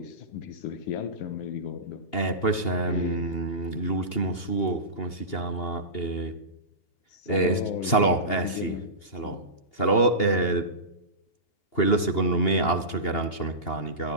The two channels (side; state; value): right; late; 2.8 ms